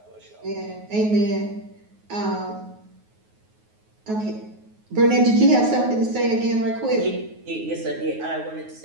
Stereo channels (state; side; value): late; left; 9.4 ms